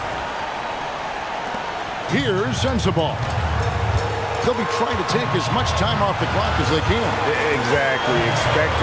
Here's Sensabaugh. They'll be trying to take as much time off the clock as they can. Exactly. Expect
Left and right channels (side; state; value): both; identical; correlation 1.00